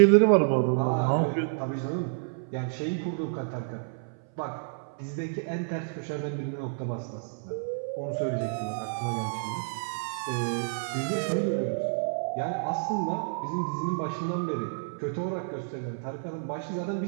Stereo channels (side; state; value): left; silent; 58 dB below the other